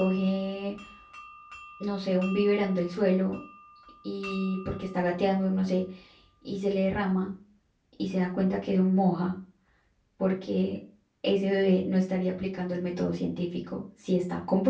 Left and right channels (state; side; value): identical; both; correlation 1.00